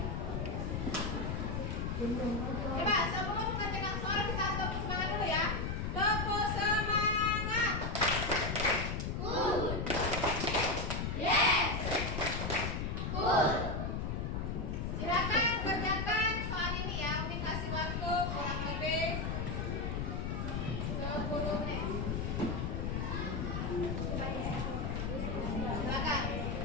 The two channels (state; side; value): noise; left; rumble, 1 dB below the sound